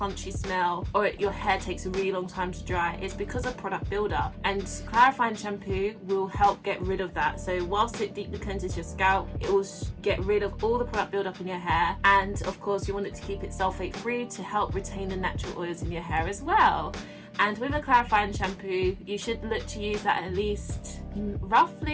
smell, or your hair takes a really long time to dry, it's because of product buildup. And clarifying shampoo will help get rid of that. So whilst it deeply cleanses your scalp, it will get rid of all the product buildup in your hair. And of course you want it to keep it sulfate free to help retain the natural oils in your hair as well. And with a clarifying shampoo, you should look to use that at least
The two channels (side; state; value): both; identical; correlation 1.00